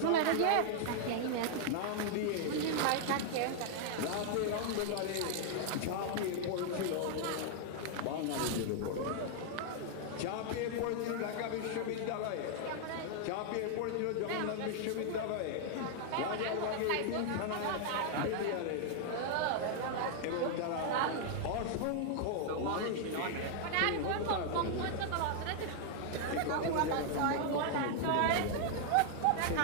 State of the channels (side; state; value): both; different; correlation 0.00